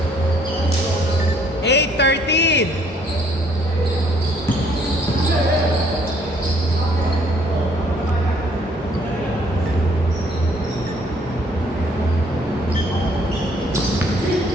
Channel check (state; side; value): normal; both; correlation 0.63